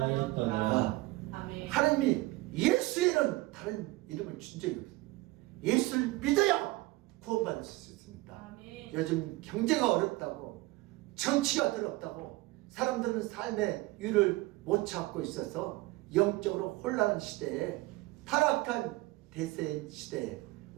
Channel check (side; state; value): left; quieter; 20.3 dB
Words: 하였더라. 아멘. 하나님이 예수에는 다른 이름을 준 적이 없어요. 예수를 믿어야 구원받을 수 있습니다. 아멘. 요즘 경제가 어렵다고, 정치가 더럽다고, 사람들은 삶의 유를 못 찾고 있어서 영적으로 혼란한 시대에, 타락한 대세 시대에